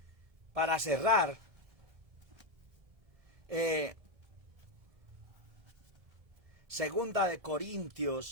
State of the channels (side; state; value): left; late; 1.7 ms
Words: para cerrar, Segunda de